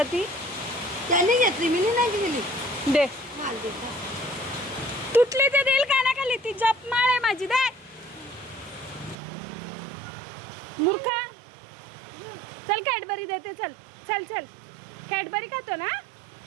ती. त्याने घेतली, मी नाही गेली. दे माल देता तुटली ते देईल कानाखाली. ती जप माळ आहे माझी. दे मूर्खा. चल कॅडबरी देते. चल चल चल. कॅडबरी खातो ना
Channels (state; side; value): drops out; left; at 9.2 s